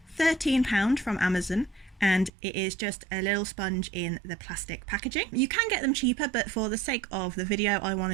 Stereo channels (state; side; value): drops out; left; at 2.3 s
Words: £13 from Amazon, and it is just a little sponge in the plastic packaging. You can get them cheaper, but for the sake of the video I